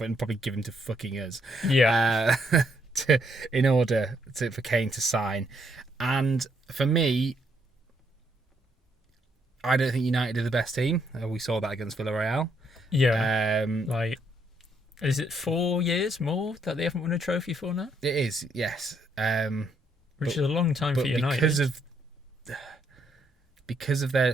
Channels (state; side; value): normal; both; correlation 0.73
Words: and probably give him to fucking us. Yeah. In order for Kane to sign. And for me, I don't think United are the best team. We saw that against Villarreal. Yeah. Is it 4 years more that they haven't won a trophy for now? It is, yes. Which is a long time for United. Because of